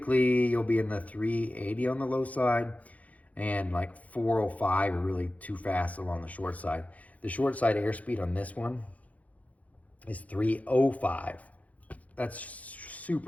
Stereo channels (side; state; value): right; late; 0.070 ms